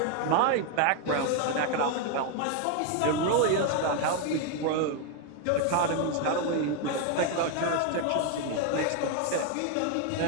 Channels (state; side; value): different; both; correlation 0.01